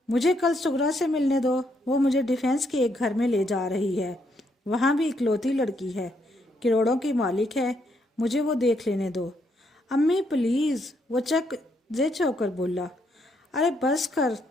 مجھے کل سغرا سے ملنے دو، وہ مجھے ڈیفینس کے ایک گھر میں لے جا رہی ہے، وہاں بھی اکلوتی لڑکی ہے، کروڑوں کی مالک ہے، مجھے وہ دیکھ لینے دو۔ امی پلیز، وہ چک زچ ہو کر بولا۔ ارے بس کر،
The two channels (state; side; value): normal; both; correlation 0.75